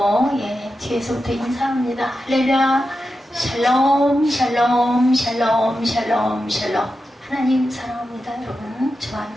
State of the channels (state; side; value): normal; both; correlation 0.90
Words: 뒤에서부터 인사합니다. 할렐루야 샬롬 샬롬 샬롬 샬롬 샬롬. 하나님 사랑합니다. 여러분 주